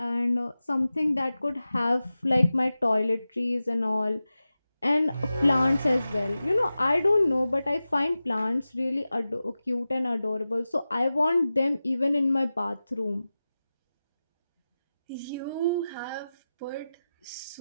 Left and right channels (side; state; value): both; inverted; correlation -0.94